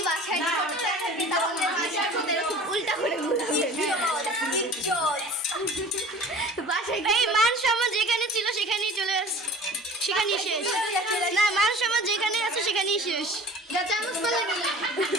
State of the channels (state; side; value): normal; both; correlation 0.42